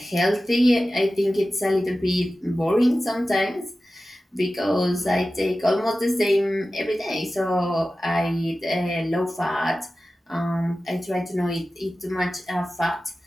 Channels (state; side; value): normal; both; correlation 0.95